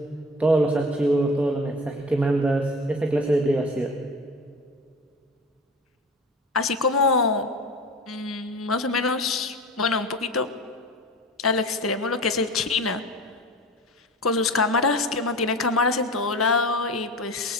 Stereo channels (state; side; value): normal; both; correlation 0.34